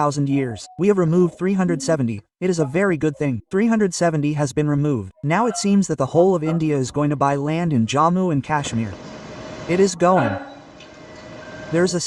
years. We have removed 370. It is a very good thing. 370 has been removed. Now it seems that the whole of India is going to buy land in Jammu and Kashmir. It is going. There is a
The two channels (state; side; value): identical; both; correlation 1.00